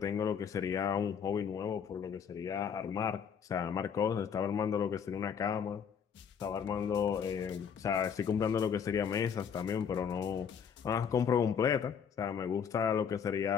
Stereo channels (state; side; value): quieter; right; 7.3 dB